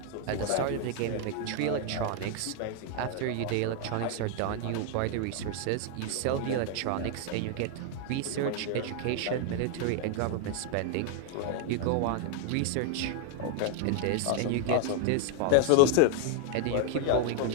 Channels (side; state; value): both; different; correlation 0.00